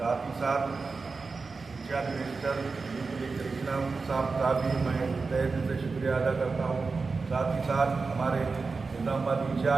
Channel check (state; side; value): quieter; left; 4.3 dB